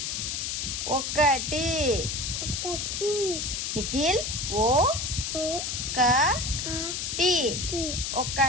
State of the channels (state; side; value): noise; left; hiss, 2 dB below the sound